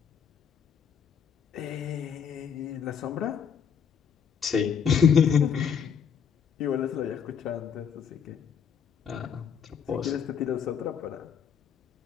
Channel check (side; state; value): right; quieter; 7.3 dB